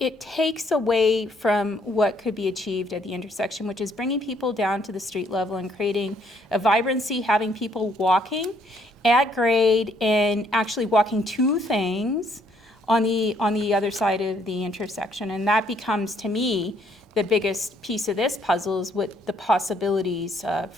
takes away from what could be achieved at the intersection, which is bringing people down to the street level and creating a vibrancy, having people walking at grade and actually walking to things on the other side of the intersection. And that becomes, to me, the biggest piece of this puzzle is what the possibilities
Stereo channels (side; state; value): both; normal; correlation 0.68